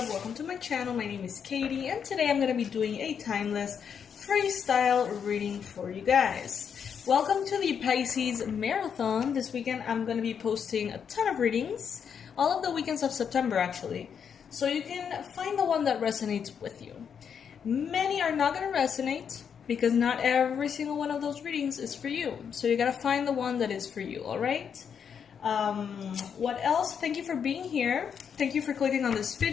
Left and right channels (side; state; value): right; quieter; 7.3 dB